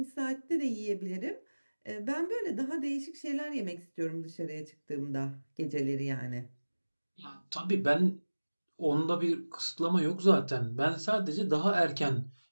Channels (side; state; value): both; inverted; correlation -1.00